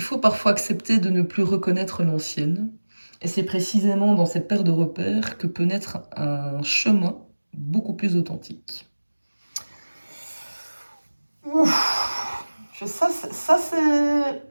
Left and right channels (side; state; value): both; inverted; correlation -1.00